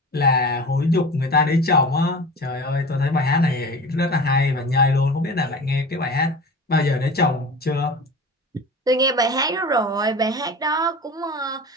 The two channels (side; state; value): both; normal; correlation 0.34